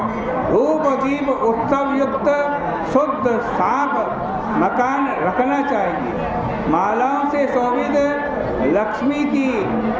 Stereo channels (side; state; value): both; identical; correlation 1.00